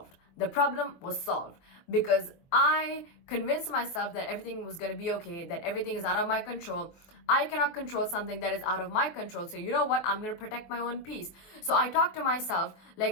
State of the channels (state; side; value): late; right; 23 ms